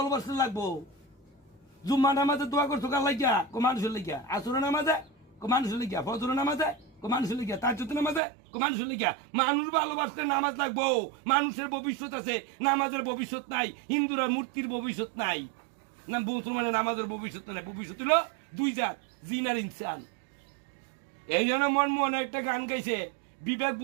লাগবো। জুম্মা নামাজে দোয়া করছো কার লাগিয়া? মানুষের লাগিয়া। আসরের নামাজে মানুষের লাগিয়া। ফজরের নামাজে মানুষের লাগিয়া। তাহাজ্জুদের নামাজে মানুষের লাগিয়া। মানুষ ভালোবাসতে নামাজ লাগবো। মানুষের ভবিষ্যৎ আছে, নামাজের ভবিষ্যৎ নাই। হিন্দুরা মূর্তির ভবিষ্যৎ নাই, না মুসলমানের নামাজের ভবিষ্যৎ নাই। ভবিষ্যৎ হলো দুই জাত, জিন আর ইনসান। এই জন্য মনমোহন একটা গান গাইছে, বিবেক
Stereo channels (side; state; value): left; drops out; at 8.2 s